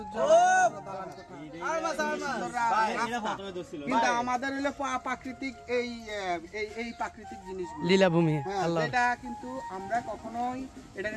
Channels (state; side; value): identical; both; correlation 1.00